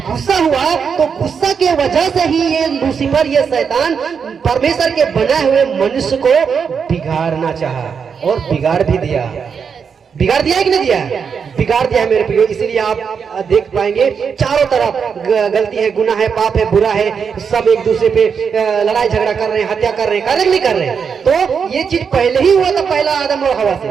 गुस्सा हुआ तो गुस्सा के वजह से ही ये लूसीफर, ये शैतान परमेश्वर के बनाए हुए मनुष्य को बिगाड़ना चाहा और बिगाड़ भी दिया। बिगाड़ दिया है कि नहीं दिया है? बिगाड़ दिया है मेरे प्रियो। इसीलिए आप देख पाएंगे चारों तरफ गलती है, गुनाह है, पाप है, बुरा है, सब एक दूसरे पे लड़ाई झगड़ा कर रहे हैं, हत्या कर रहे हैं, नहीं कर रहे हैं। तो ये चीज पहले ही हुआ था, पहला आदम और हवा से,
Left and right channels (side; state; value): left; quieter; 6.4 dB